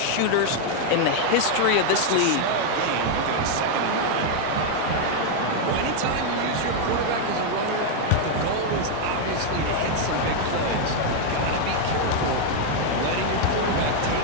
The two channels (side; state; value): both; different; correlation 0.00